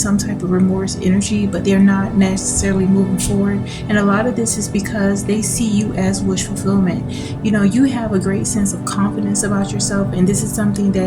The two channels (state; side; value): identical; both; correlation 1.00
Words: type of remorse energy, but they're not necessarily moving forward. And a lot of this is because they see you as wish fulfillment. You know, you have a great sense of confidence about yourself, and this is something